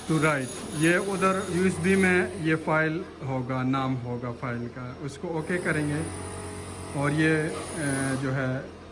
to write, یہ ادھر یو ایس بی میں یہ فائل ہوگا، نام ہوگا فائل کا. اس کو اوکے کریں گے اور یہ جو ہے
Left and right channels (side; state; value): both; identical; correlation 1.00